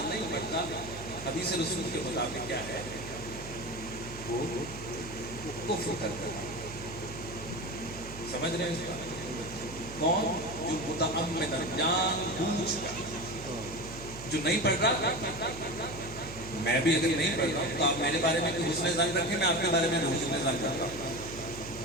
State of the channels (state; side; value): noise; right; hum, 13 dB below the sound